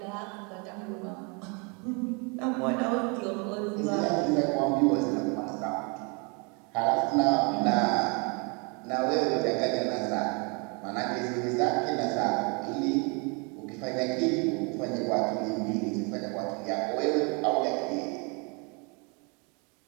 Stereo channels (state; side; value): quieter; left; 33.0 dB